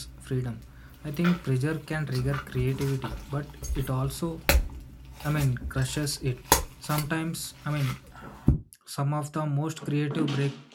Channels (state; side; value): identical; both; correlation 1.00